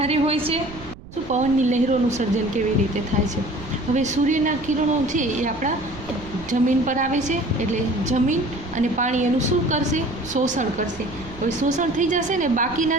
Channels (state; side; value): noise; right; rumble, 17 dB below the sound